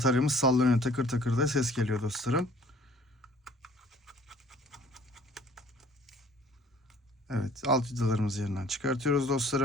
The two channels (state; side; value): normal; both; correlation 0.54